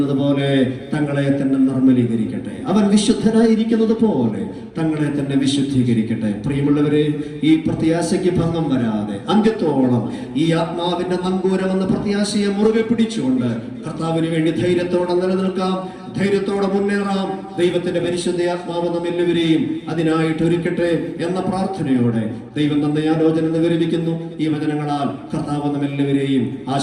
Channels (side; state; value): both; identical; correlation 1.00